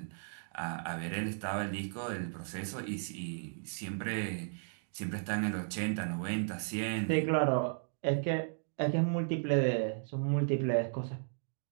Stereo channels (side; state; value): left; silent; digital silence